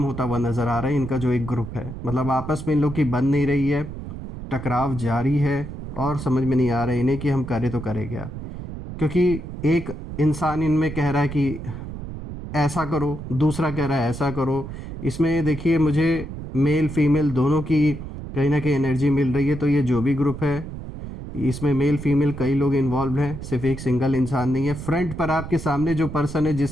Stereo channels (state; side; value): noise; right; rumble, 9 dB below the sound